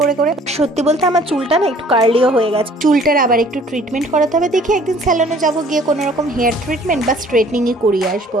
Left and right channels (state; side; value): normal; both; correlation 0.55